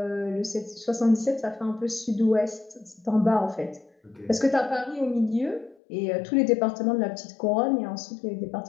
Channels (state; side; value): drops out; right; at 5.8 s